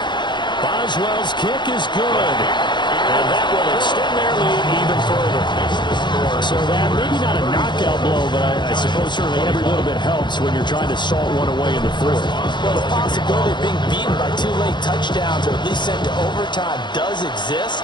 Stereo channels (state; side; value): late; right; 0.22 ms